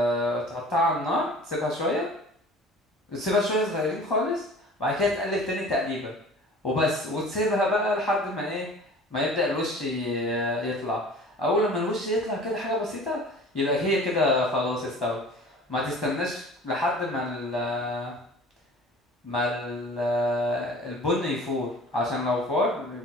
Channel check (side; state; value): both; normal; correlation 0.44